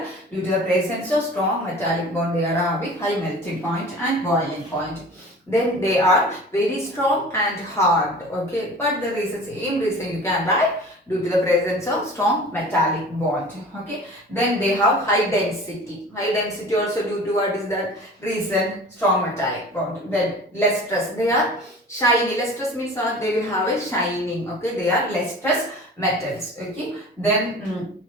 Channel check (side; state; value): both; normal; correlation 0.41